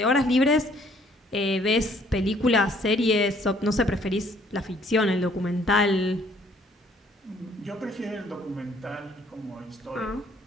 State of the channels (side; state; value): both; normal; correlation 0.62